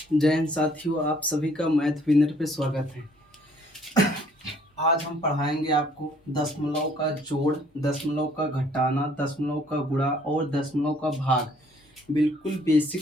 जय हिंद साथियों, आप सभी का मैथ विनर पे स्वागत है। आज हम पढ़ाएंगे आपको दशमलव का जोड़, दशमलव का घटाना, दशमलव का गुणा और दशमलव का भाग बिल्कुल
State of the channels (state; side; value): normal; both; correlation 0.61